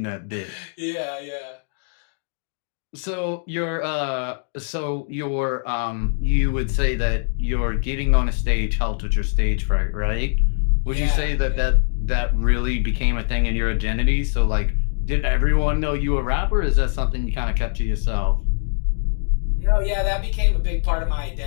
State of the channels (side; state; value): right; silent; digital silence